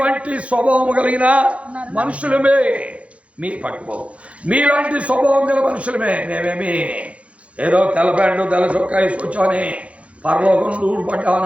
స్వభావం కలిగిన మనుషులమే. మీ పట్టుకోవు మీలాంటి స్వభావం గల మనుషులమే. మేమేమి ఏదో తెల్ల ప్యాంటు తెల్ల చొక్కా వేసుకొచ్చామని పరలోకం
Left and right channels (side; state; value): left; late; 0.063 ms